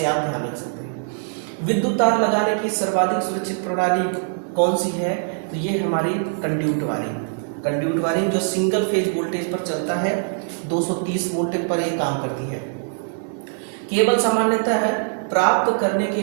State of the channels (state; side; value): silent; left; digital silence